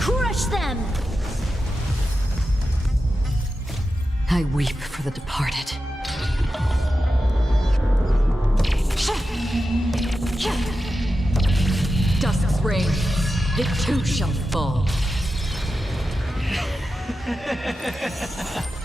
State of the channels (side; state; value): both; normal; correlation 0.91